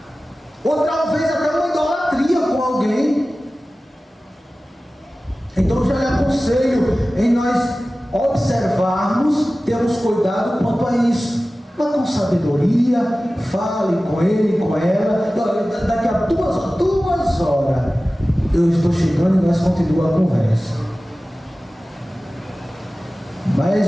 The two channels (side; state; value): both; normal; correlation 0.96